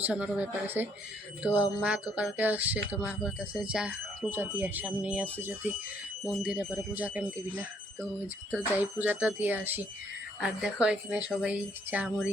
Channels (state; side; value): normal; both; correlation 0.68